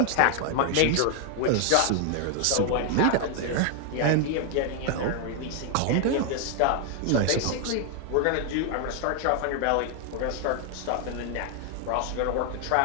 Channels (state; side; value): different; both; correlation 0.00